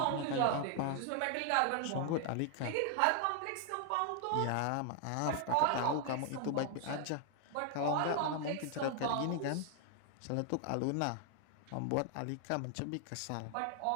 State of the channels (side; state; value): both; different; correlation 0.00